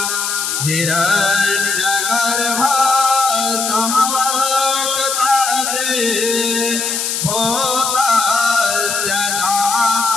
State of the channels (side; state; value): left; noise; hiss, 1 dB below the sound